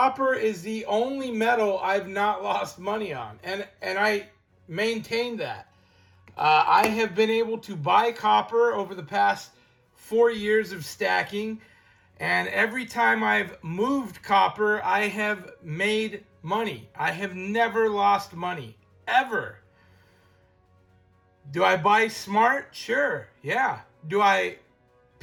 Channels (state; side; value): identical; both; correlation 1.00